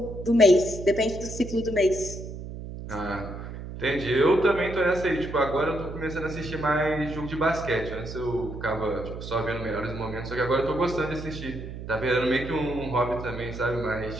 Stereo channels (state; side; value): noise; right; hum, 9 dB below the sound